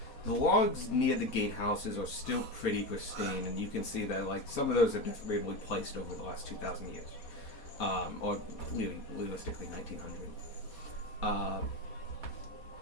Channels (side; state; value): right; late; 4.2 ms